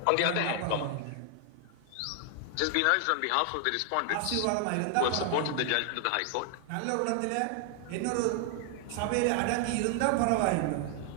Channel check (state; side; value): different; both; correlation 0.00